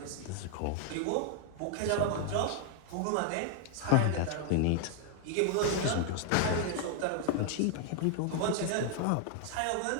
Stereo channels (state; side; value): different; both; correlation 0.00